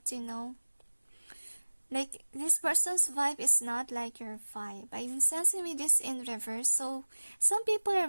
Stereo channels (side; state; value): both; inverted; correlation -1.00